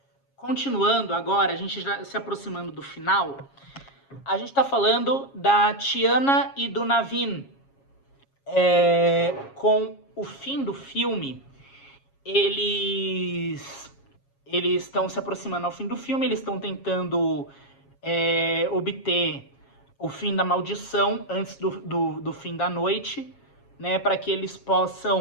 continuando agora, a gente já se aproximando do final, a gente está falando da Tiana e do Navin. Com o fim do filme, eles estão se aproximando ao fim do filme, eles estão tentando obter o fim da maldição antes do fim da noite, né, para que eles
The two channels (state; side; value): late; right; 7.3 ms